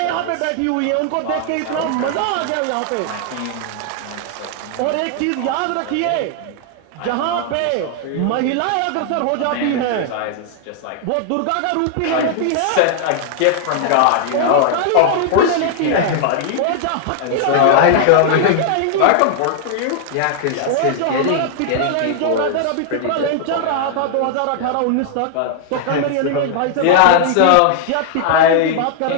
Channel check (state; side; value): different; both; correlation 0.00